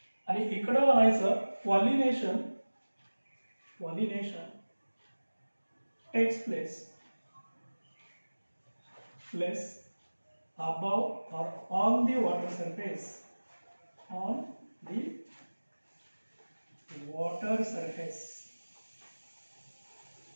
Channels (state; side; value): inverted; both; correlation -1.00